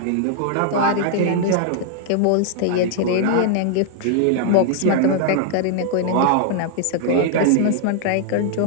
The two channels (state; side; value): different; both; correlation 0.00